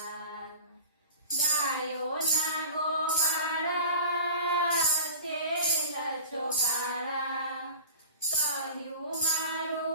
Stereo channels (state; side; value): inverted; both; correlation -0.36